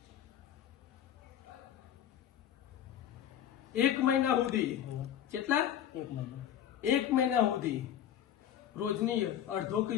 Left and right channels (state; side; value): quieter; right; 10.3 dB